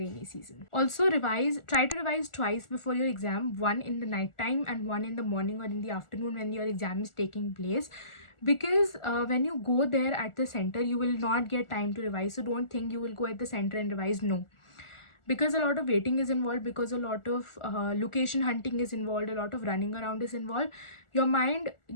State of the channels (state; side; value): late; right; 1.4 ms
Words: season. Also try to revise twice before your exam, one in the night time and one in the morning or in the afternoon when your exam is taking place, because when you go there at the center, you will not get time to revise. So don't think you will go at the center and revise. No, because a lot of waiting is involved, because a lot of location hunting is involved, a lot of running around is involved, your mind